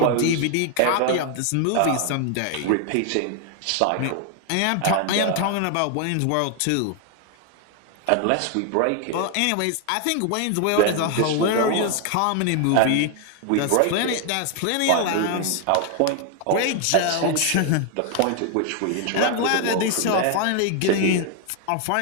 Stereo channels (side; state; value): both; different; correlation 0.00